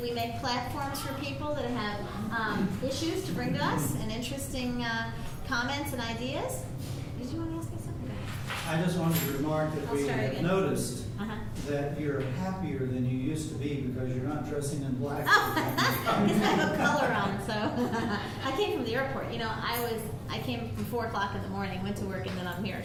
make platforms for people that have issues to bring to us and interesting comments and ideas. Did you want to ask me something? I just wanted to remark that we have noticed that you're happier than you used to be because you're not dressing in black. Because I have a color on, so I came from the airport. You know, I came from 4 o'clock in the morning, went to work, and then I'm here.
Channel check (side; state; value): both; identical; correlation 1.00